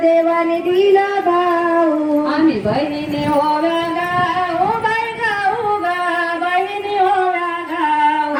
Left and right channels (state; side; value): identical; both; correlation 1.00